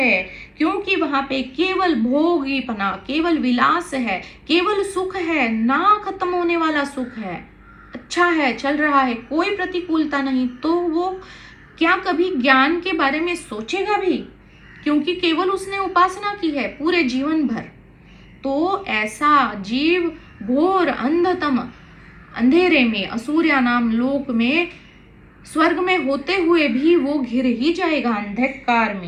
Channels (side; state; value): both; identical; correlation 1.00